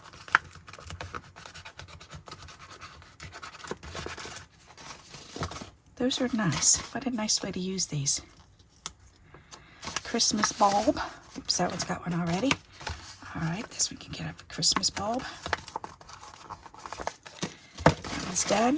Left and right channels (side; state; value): both; identical; correlation 1.00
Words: Those are nice. What a nice way to use these. Christmas bulb. Oops, that one's got one already. All right, this one can get up a Christmas bulb. That one's